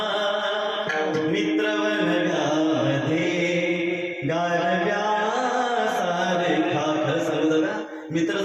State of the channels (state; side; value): identical; both; correlation 1.00